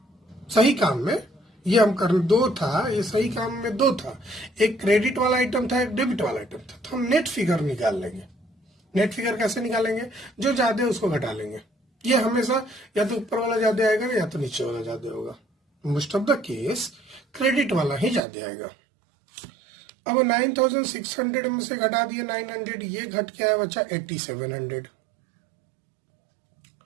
सही काम में ये हम कर, 2 था, ये सही काम में 2 था, एक क्रेडिट वाला आइटम था, एक डेबिट वाला आइटम था। तो हम नेट फिगर निकाल लेंगे। नेट फिगर कैसे निकालेंगे, जो ज्यादा है उसको घटा लेंगे। ये हमेशा या तो ऊपर वाला ज्यादा आएगा या तो नीचे वाला ज्यादा होगा। Most of the case credit वाला ही ज्यादा आएगा। अब 9,600 में से घटा दिए 900, ये घट के आया बच्चा 8,700।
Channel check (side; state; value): left; drops out; at 18.2 s